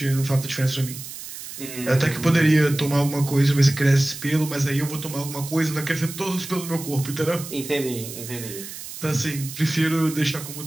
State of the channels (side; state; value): right; noise; hiss, 11 dB below the sound